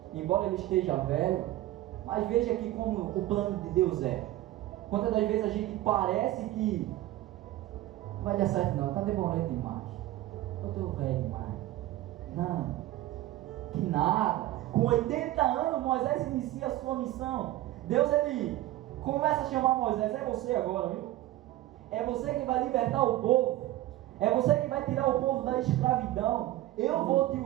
embora ele esteja velho. Mas veja aqui como o plano de Deus é. Quantas das vezes a gente parece que não vai dar certo não, está demorando demais. Eu estou velho demais. Não, que nada. Com 80 anos, Moisés inicia a sua missão. Deus, ele começa a chamar Moisés. É você agora, viu? É você que vai libertar o povo. É você que vai tirar o povo da escravidão. Eu vou te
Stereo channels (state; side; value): quieter; left; 15.6 dB